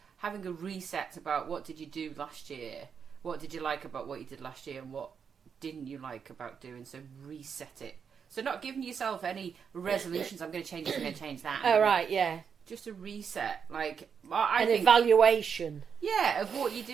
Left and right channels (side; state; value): left; quieter; 6.7 dB